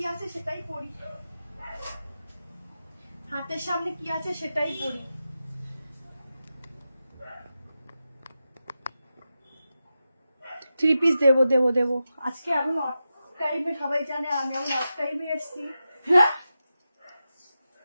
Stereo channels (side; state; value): both; inverted; correlation -0.90